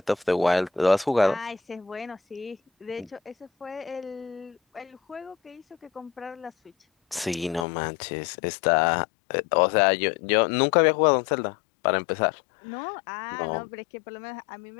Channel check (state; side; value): drops out; right; at 7.7 s